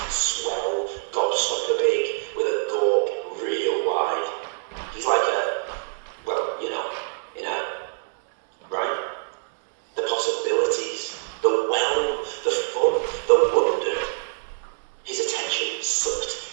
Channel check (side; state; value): left; silent; digital silence